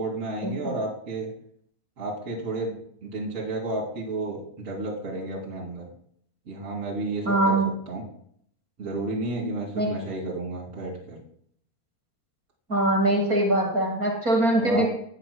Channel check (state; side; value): late; left; 4.3 ms